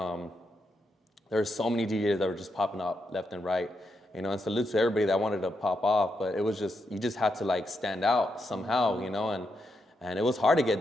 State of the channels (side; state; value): both; normal; correlation 0.83